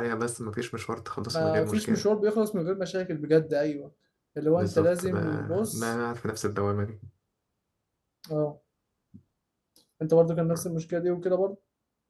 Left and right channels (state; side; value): identical; both; correlation 1.00